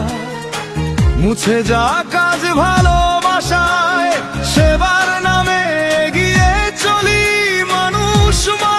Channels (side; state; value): both; identical; correlation 1.00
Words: মুছে যা কাজ ভালোবাসায়, সেবার নামে এগিয়ে চলি মানুষ